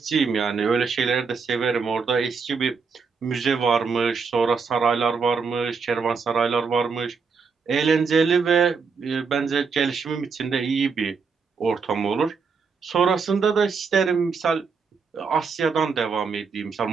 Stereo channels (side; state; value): left; quieter; 5.3 dB